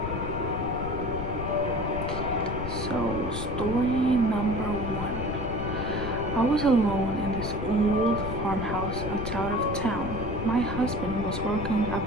So, story number 1. I was alone in this old farmhouse outside of town. My husband was working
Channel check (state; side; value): noise; left; rumble, 5 dB below the sound